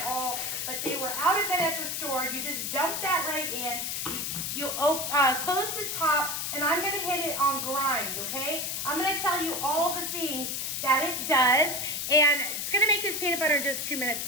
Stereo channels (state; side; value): noise; left; hiss, 2 dB below the sound